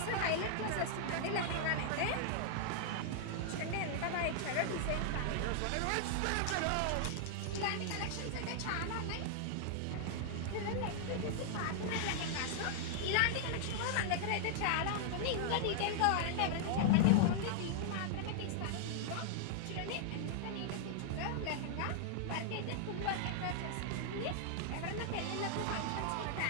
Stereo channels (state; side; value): different; both; correlation -0.01